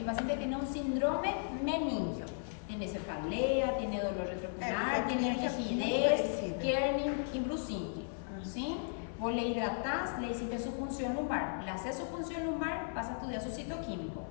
paciente tiene un síndrome meningio. Tiene cefalea, tiene dolor retrocular, porque tiene é muito rigidez, parecido. Kerning y brucínque, ¿sí? Vos le hidratás, le hiciste su punción lumbar, le haces su punción lumbar, vas a estudiar su citoquímico,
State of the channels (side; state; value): right; silent; 54 dB below the other